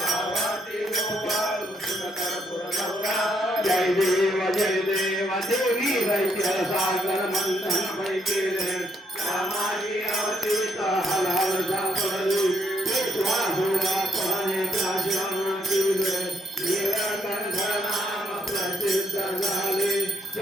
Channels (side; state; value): both; normal; correlation 0.73